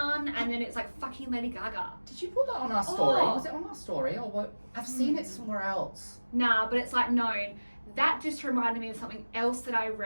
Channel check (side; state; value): both; inverted; correlation -1.00